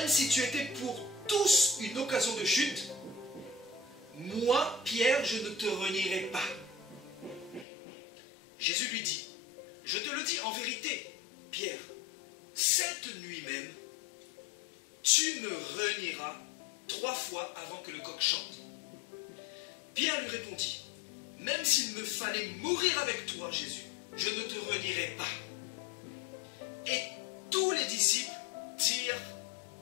si tu étais pour tous une occasion de chute, moi, Pierre, je ne te renierai pas. Jésus lui dit: je te le dis en vérité, Pierre, cette nuit même, tu me renieras 3 fois avant que le coq chante. Pierre lui répondit: même s'il me fallait mourir avec toi, Jésus, je ne te renierai pas. Et tous les disciples dirent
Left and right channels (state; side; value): drops out; right; at 7.7 s